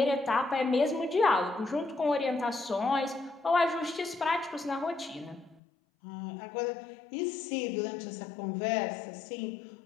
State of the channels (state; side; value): drops out; right; at 5.6 s